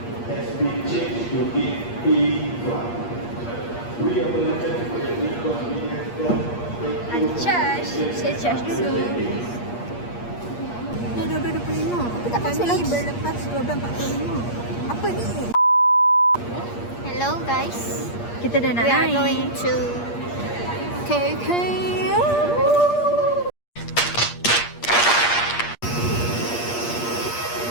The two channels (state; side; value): late; right; 8.5 ms